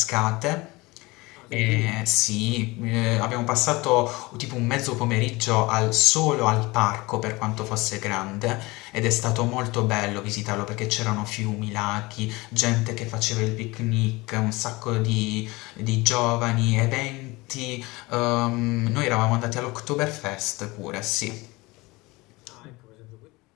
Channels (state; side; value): quieter; right; 22.7 dB